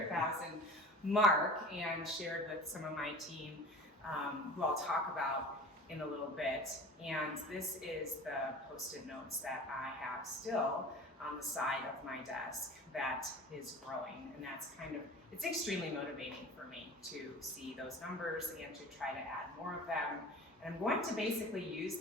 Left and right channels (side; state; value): both; normal; correlation 0.39